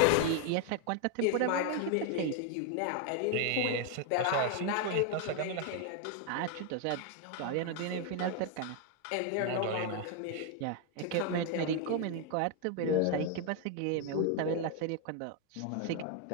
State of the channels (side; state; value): both; different; correlation 0.00